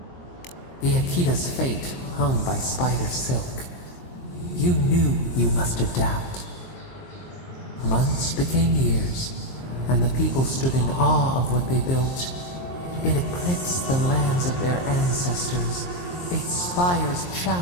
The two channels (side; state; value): right; late; 23 ms